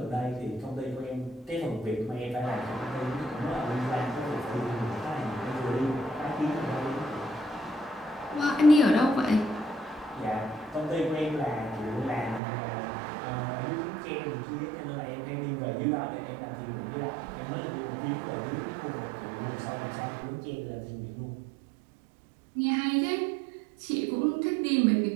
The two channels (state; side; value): drops out; left; at 12.4 s